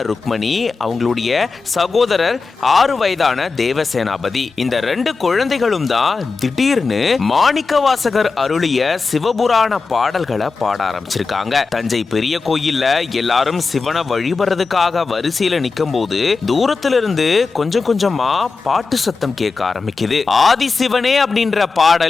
ருக்மணி, அவங்களுடைய சகோதரர் 6 வயதான தேவசேனாபதி. இந்த 2 குழந்தைகளும் தான் திடீர்னு மாணிக்கவாசகர் அருளிய சிவபுராண பாடல்களை பாட ஆரம்பிச்சிருக்காங்க. தஞ்சை பெரிய கோயில்ல எல்லாரும் சிவனை வழிபடுறதுக்காக வரிசையில நிக்கும் போது தூரத்துல இருந்து கொஞ்சம் கொஞ்சமா பாட்டு சத்தம் கேட்க ஆரம்பிக்குது. ஆதி சிவனே அப்படின்ற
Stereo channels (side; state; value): right; quieter; 4.4 dB